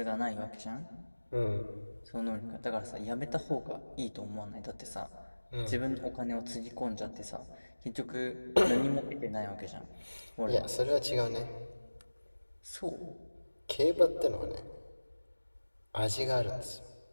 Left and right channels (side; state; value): both; inverted; correlation -1.00